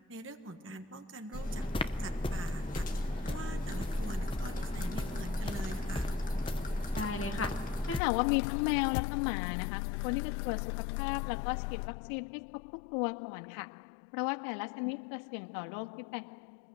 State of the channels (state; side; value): drops out; right; at 8.0 s